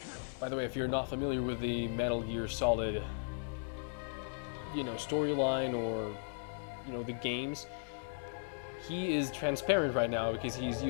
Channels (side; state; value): right; silent; 53 dB below the other